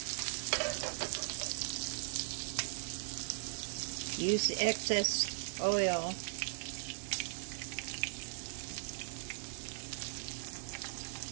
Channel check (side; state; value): left; silent; digital silence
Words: Use the excess oil.